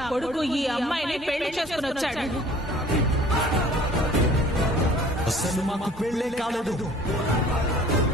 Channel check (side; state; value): both; normal; correlation 0.51